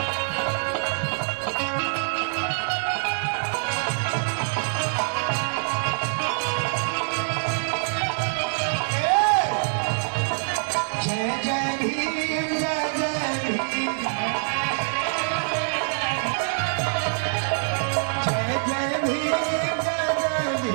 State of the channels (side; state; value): left; silent; digital silence